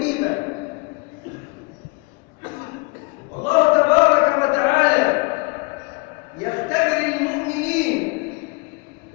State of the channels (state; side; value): quieter; right; 27.4 dB